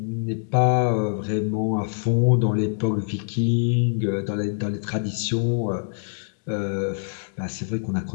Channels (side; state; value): right; silent; digital silence